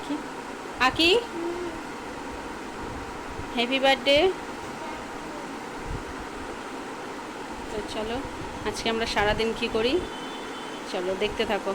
আকি, হ্যাপি বার্থডে। তো চলো, আজকে আমরা সারাদিন কি করি চলো দেখতে থাকো।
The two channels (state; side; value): identical; both; correlation 1.00